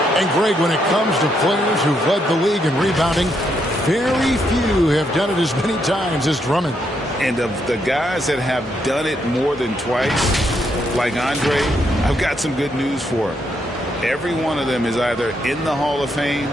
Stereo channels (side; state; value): both; normal; correlation 0.77